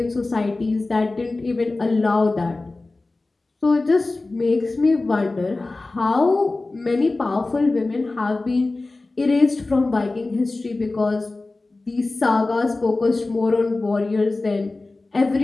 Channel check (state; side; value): quieter; right; 3.3 dB